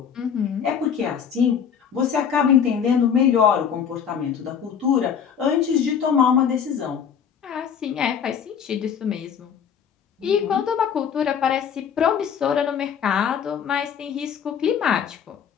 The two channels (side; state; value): right; quieter; 7.7 dB